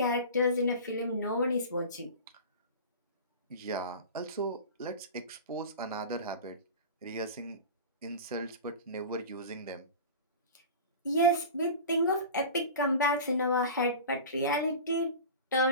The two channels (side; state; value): both; inverted; correlation -0.32